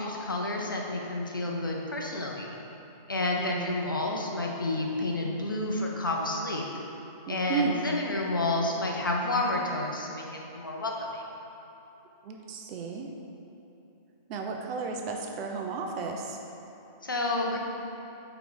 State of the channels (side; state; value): both; inverted; correlation -0.31